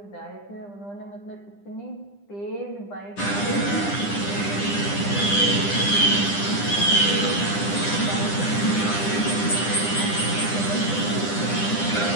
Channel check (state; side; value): late; right; 9.9 ms